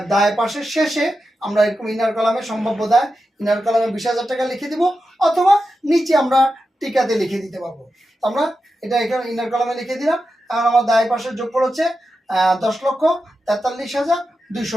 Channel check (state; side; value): normal; both; correlation 0.90